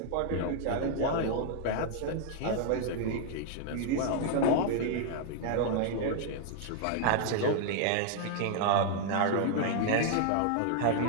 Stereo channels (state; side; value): different; both; correlation 0.00